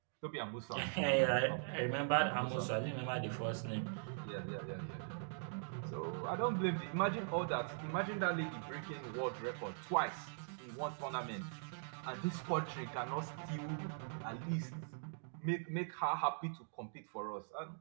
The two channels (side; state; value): left; silent; digital silence